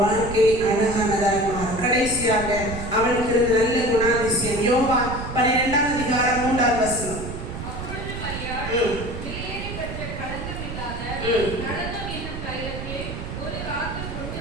வாழ்க்கை அழகானதாக மாறும். கடைசியாக அவளுக்கு இருந்த நல்ல குணாதிசயம் யோவான் 12ஆம் அதிகாரம் 3ஆம் வசனம். அப்பொழுது மரியாள் வெளியேறி பெற்ற களங்கம் இல்லாத நடனம் என்னும் தைலத்தை ஒரு ராத்திரி கொண்டு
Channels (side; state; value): right; noise; rumble, 7 dB below the sound